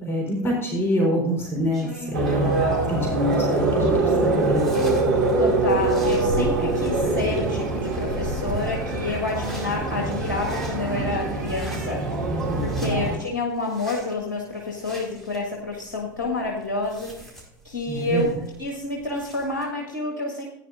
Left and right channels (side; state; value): both; normal; correlation 0.16